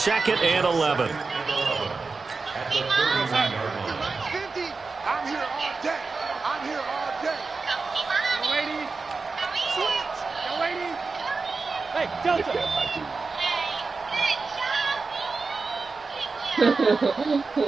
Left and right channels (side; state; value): left; quieter; 4.2 dB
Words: and 11. I'm here all day. I'm here all day. Young lady. Switch. Young lady. Hey, Delta.